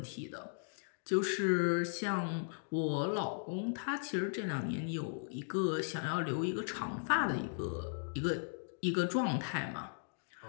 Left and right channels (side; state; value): right; silent; digital silence